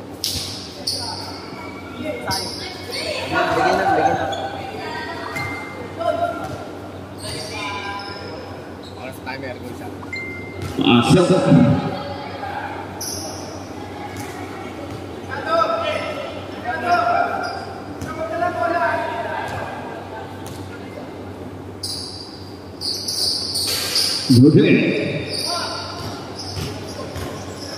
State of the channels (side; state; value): both; identical; correlation 1.00